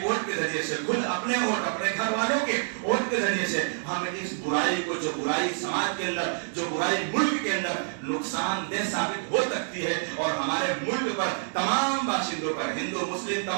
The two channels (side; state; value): left; silent; digital silence